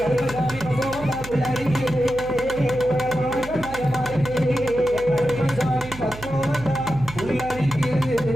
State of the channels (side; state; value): right; noise; hum, 14 dB below the sound